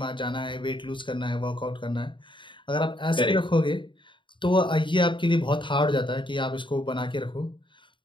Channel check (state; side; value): late; right; 0.24 ms